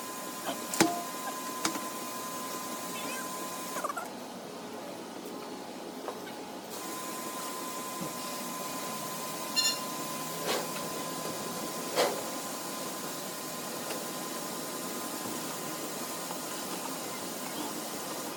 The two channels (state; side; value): identical; both; correlation 1.00